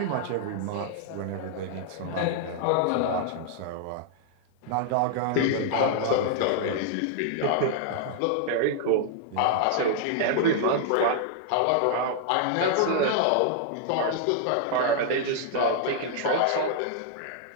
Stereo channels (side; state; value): both; different; correlation -0.01